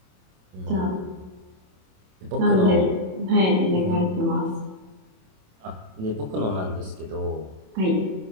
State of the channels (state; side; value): late; left; 27 ms